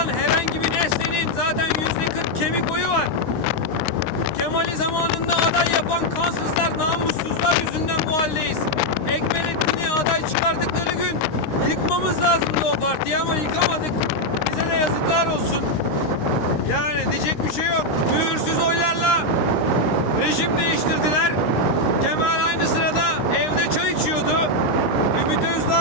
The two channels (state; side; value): late; right; 13 ms